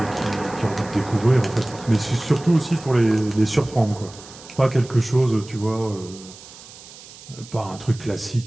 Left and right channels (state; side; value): noise; right; hiss, 18 dB below the sound